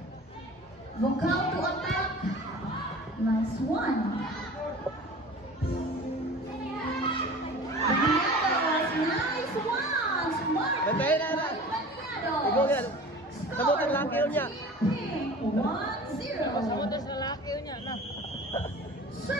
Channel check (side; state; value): both; normal; correlation 0.40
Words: Vocal to attack. Nice one. Nice one. Smart. Bantayin na na. Ikaw yan. Sabutin laki yun niya. 1-0. Sabutin sa laki yun niya. Na.